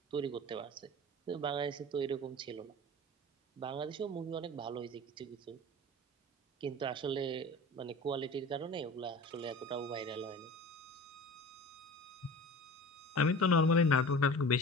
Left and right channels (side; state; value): both; normal; correlation 0.37